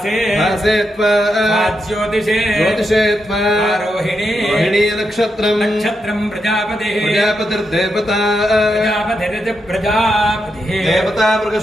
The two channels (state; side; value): normal; both; correlation 0.84